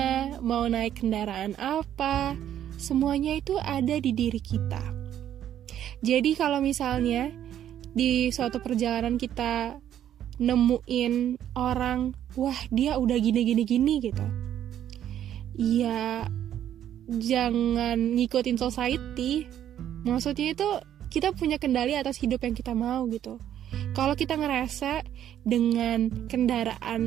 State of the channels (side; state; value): left; quieter; 10.7 dB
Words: mau naik kendaraan apa, semuanya itu ada di diri kita. Jadi kalau misalnya di suatu perjalanan kita nemuin orang, wah dia udah gini gitu, ya jangan ngikutin society. Maksudnya itu kita punya kendali atas hidup yang kita mau gitu. Kalau kita ngerasa dengan